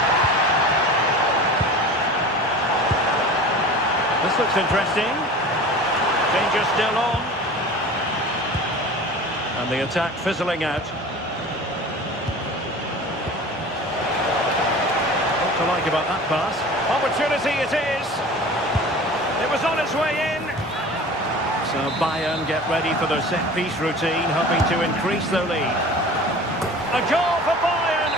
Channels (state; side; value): normal; both; correlation 0.39